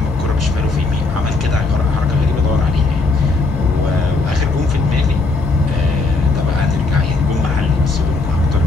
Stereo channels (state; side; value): quieter; right; 3.7 dB